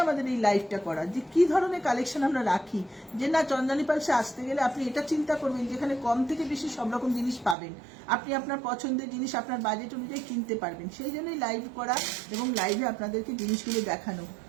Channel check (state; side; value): drops out; left; at 7.6 s